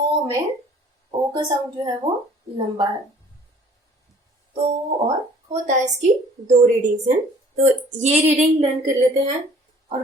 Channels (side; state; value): both; normal; correlation 0.53